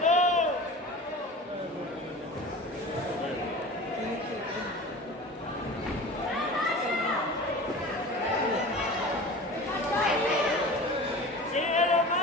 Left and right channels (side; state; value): both; normal; correlation 0.37